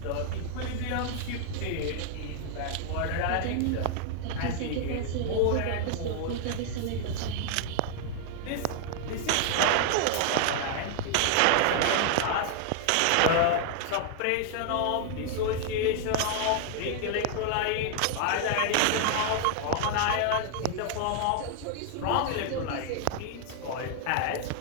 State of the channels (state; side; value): different; both; correlation 0.00